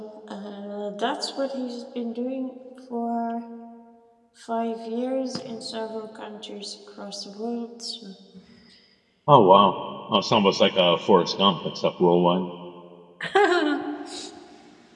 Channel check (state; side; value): identical; both; correlation 1.00